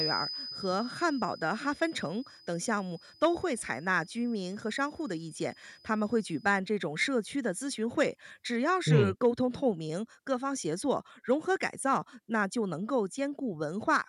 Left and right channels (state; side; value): identical; both; correlation 1.00